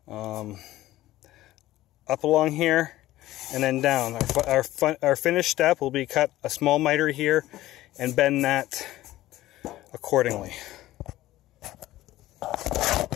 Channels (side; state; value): right; quieter; 15.7 dB